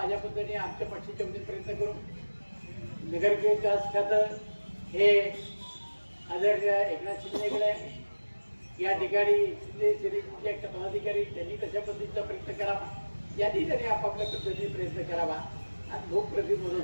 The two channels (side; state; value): both; inverted; correlation -1.00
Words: पद्धतीने आमच्या पक्षाच्या वतीने प्रयत्न करू. नगरविकास खातं हे आदरणीय एकनाथ शिंदेकडे, या ठिकाणी शिंदे पदाधिकारी त्यांनी तशा पद्धतीचा प्रयत्न करावा. यांनी त्यांनी आपापल्या पद्धतीने प्रयत्न करावा आणि लोकप्रतिनिधी